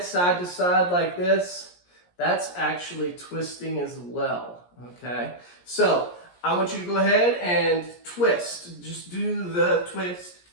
side to side like this, that's actually twisting as well, okay? So I want you to go ahead and twist. Just do the twist.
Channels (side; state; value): right; late; 17 ms